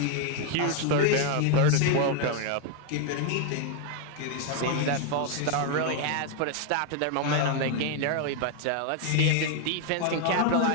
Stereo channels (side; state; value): both; different; correlation 0.01